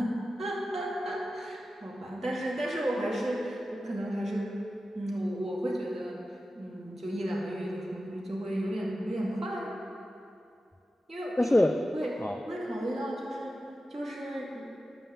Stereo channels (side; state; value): both; normal; correlation 0.93